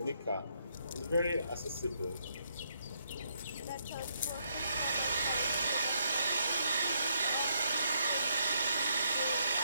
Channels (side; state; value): both; inverted; correlation -0.75